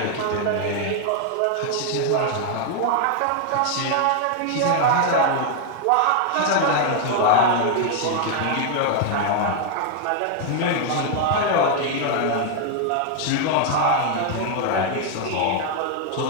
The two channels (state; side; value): different; both; correlation 0.00